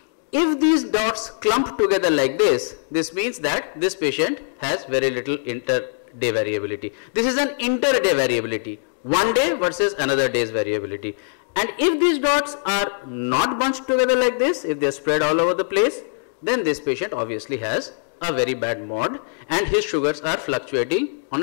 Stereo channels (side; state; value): right; silent; digital silence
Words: If these dots clump together like this, this means that this patient has very little inter-day variability. This is an inter-day variability, one day versus another day's variability. And if these dots are not bunched together like this, if they are spread all over the place, then this patient obviously has a very bad mod and his sugars are fluctuating